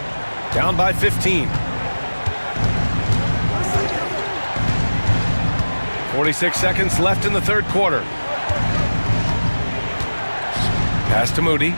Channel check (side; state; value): both; inverted; correlation -1.00